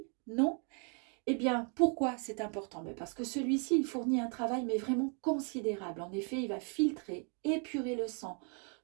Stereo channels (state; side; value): quieter; left; 38.1 dB